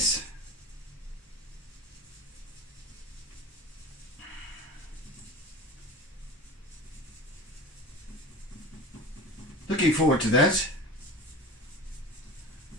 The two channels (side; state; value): both; normal; correlation 0.33